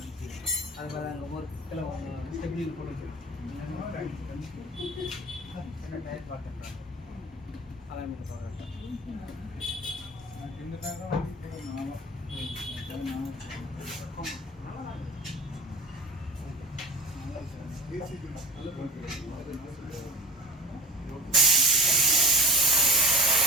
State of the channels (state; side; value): normal; both; correlation 0.36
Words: அது பாரு அங்கே ஒரு கிலோ ஸ்டெப்லி போட்டு என்ன டயர் பார்த்துட்டேன். அதான் சொல்கிறேன்.